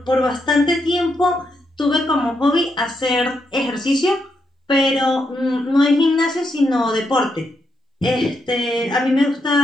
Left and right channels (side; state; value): both; normal; correlation 0.81